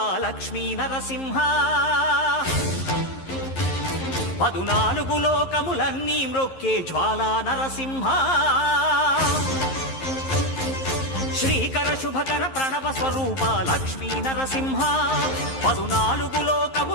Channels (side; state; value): right; late; 11 ms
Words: లక్ష్మీ నరసింహ 14 లోకములన్నీ మ్రొక్కే జ్వాలా నరసింహ శ్రీకర శుభకర ప్రణవ స్వరూప లక్ష్మీ నరసింహ 14